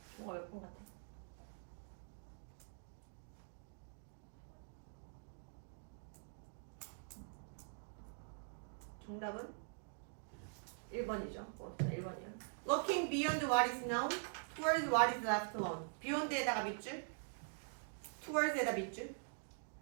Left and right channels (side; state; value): left; silent; digital silence